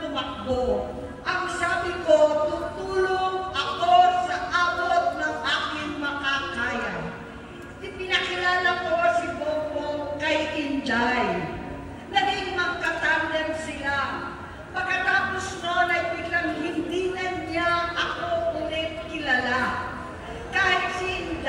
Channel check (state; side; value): identical; both; correlation 1.00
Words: tumakbo. Ang sabi ko, tutulong ako sa abot ng aking makakaya. Ipinakilala ko si Bongbong kay Inday. Naging magkatandem sila. Pagkatapos noon ay biglang hindi na niya ako ulit kilala. Kahit si